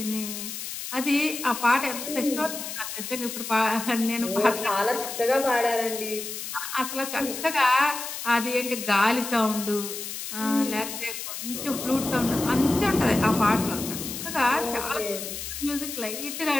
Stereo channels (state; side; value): noise; left; hiss, 7 dB below the sound